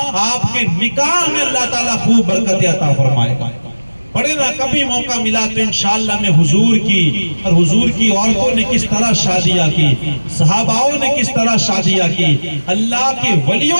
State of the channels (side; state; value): both; inverted; correlation -1.00